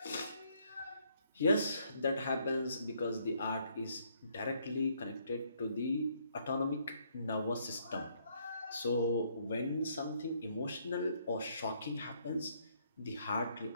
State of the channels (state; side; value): inverted; both; correlation -0.69